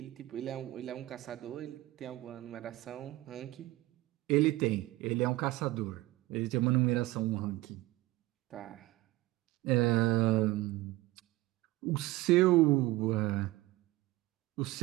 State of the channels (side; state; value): left; quieter; 18.5 dB